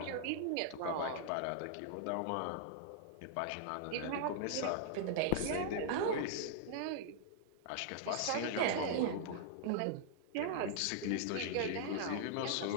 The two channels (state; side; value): different; both; correlation -0.01